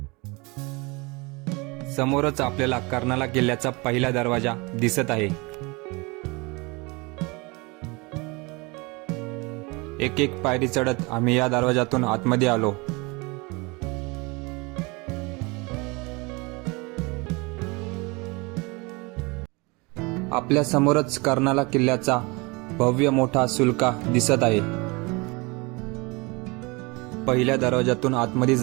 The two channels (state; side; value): quieter; left; 26.7 dB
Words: समोरच आपल्याला कर्नाला किल्ल्याचा पहिला दरवाजा दिसत आहे. एक एक पायरी चढत आम्ही या दरवाजातून आतमध्ये आलो. आपल्या समोरच कर्नाला किल्ल्याचा भव्य मोठा सुलका दिसत आहे. पहिल्या दरवाजातून आतमध्ये